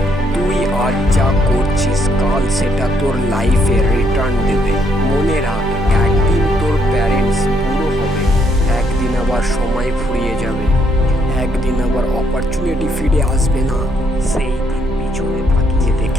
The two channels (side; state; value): both; normal; correlation 0.72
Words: তুই আজ যা করছিস, কাল সেটা তোর লাইফে রিটার্ন দেবে। মনে রাখ, একদিন তোর প্যারেন্টস বুড়ো হবে, একদিন আবার সময় ফুরিয়ে যাবে, একদিন আবার অপরচুনিটি ফিরে আসবে না। সেই দিন পিছনে তাকিয়ে